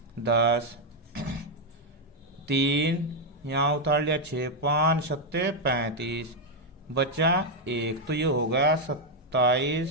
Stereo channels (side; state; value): both; normal; correlation 0.01